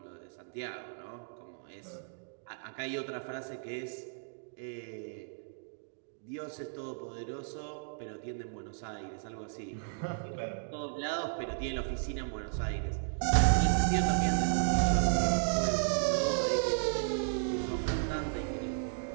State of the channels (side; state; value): left; silent; digital silence